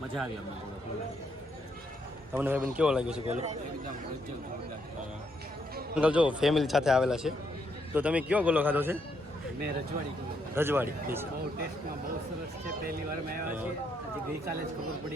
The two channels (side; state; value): both; normal; correlation 0.75